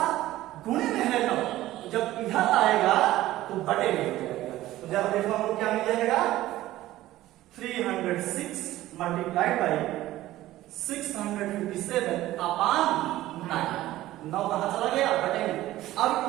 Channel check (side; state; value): left; quieter; 15.5 dB